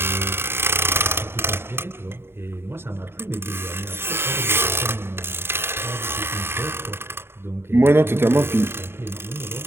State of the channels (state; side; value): late; left; 0.11 ms